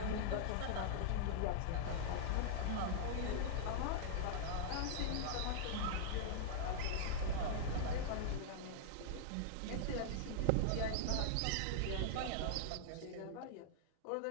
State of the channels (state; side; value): different; both; correlation -0.01